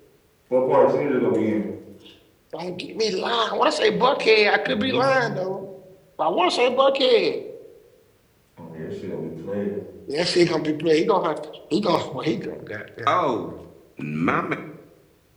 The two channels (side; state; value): both; identical; correlation 1.00